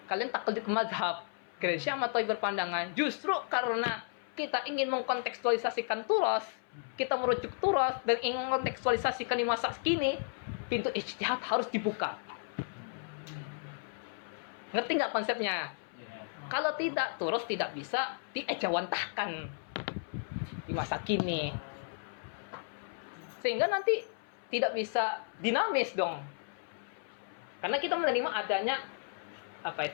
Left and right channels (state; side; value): silent; right; 55 dB below the other